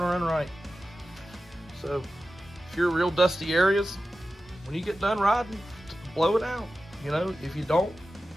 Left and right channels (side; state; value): both; normal; correlation 0.93